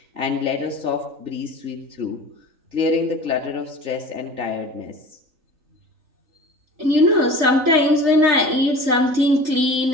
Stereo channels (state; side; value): late; left; 3.9 ms